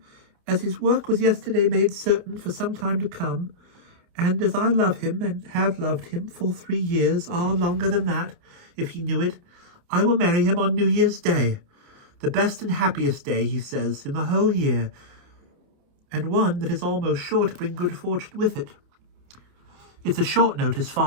as his work was yesterday made certain for some time to come, and as I love him and have loved him full 3 years, longer than that, if he knew it, I will marry him on New Year's Day, the best and happiest day, he says, in the whole year, and one that is almost sure to bring good fortune with it. It's a short notice,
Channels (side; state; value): left; late; 28 ms